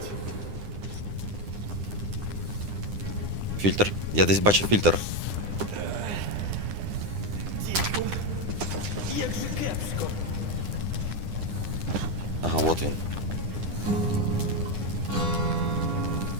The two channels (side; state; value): left; late; 9.9 ms